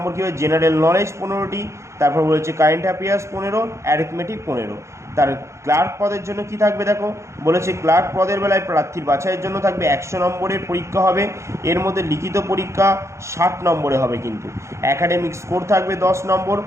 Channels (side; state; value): left; late; 0.14 ms